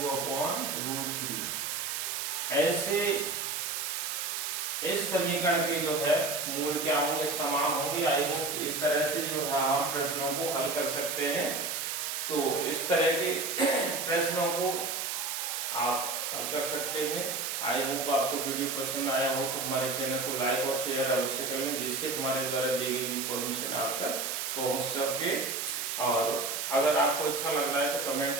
ऐसे इस समीकरण के जो है मूल क्या होंगे समान होंगे। आई होप इस तरह से जो है हम प्रश्नों को हल कर सकते हैं। तो इस तरह के प्रश्नों को आप हल कर सकते हैं। आई होप आपको वीडियो पसंद आया हो तो हमारे चैनल को लाइक और शेयर अवश्य कर लें, जिससे हमारे द्वारा दी गई इन्फॉर्मेशन आप तक पहुंच सके। और अगर आपको अच्छा लग रहा है तो कमेंट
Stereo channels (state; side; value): noise; right; hiss, 2 dB below the sound